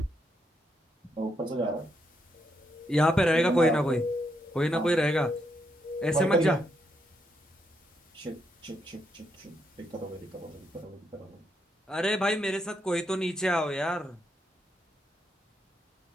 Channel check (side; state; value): both; normal; correlation 0.79